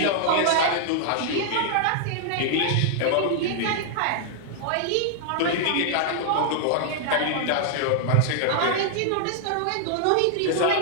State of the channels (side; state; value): both; different; correlation -0.01